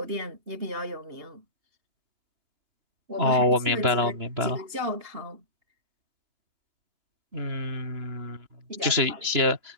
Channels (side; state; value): left; late; 3.0 ms